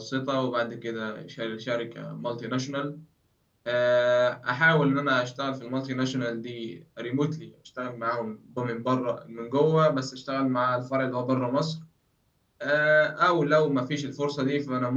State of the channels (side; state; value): both; identical; correlation 1.00